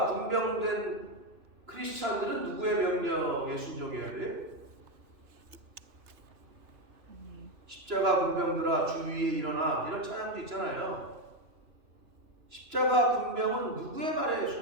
군병된 크리스찬들은 누구의 명령에 순종해야 돼? 십자가 군병들아 주 위에 일어나, 이런 찬양도 있잖아요. 십자가 군병은 누구의 말에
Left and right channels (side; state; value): left; late; 3.0 ms